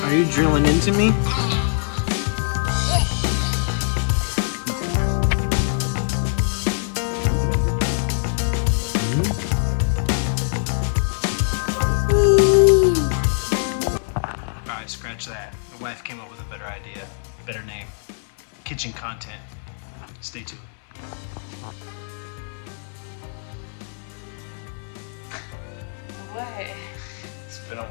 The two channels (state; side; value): silent; right; 63 dB below the other